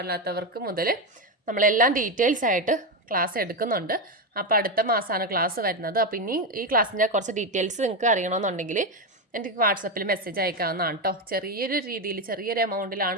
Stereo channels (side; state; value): both; normal; correlation 0.11